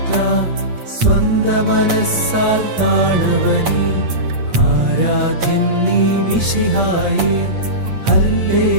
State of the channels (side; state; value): left; late; 8.5 ms